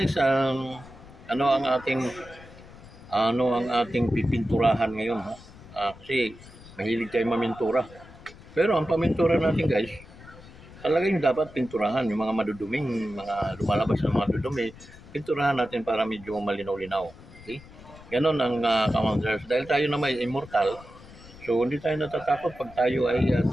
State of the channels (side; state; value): left; noise; rumble, 19 dB below the sound